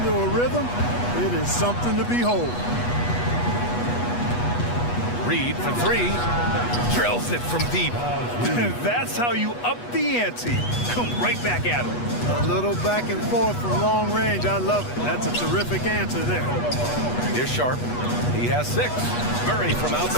a rhythm, it is something to behold. Reed for 3. Drills it from deep. That's how you up the ante. Come right back at him. A little back and forth from long range. I love it. That's a terrific answer there. Here's Sharp. He has 6. Murray from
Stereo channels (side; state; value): right; late; 8.3 ms